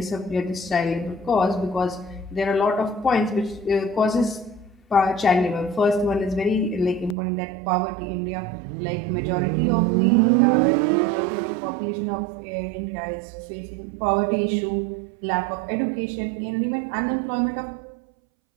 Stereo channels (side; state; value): left; drops out; at 7.2 s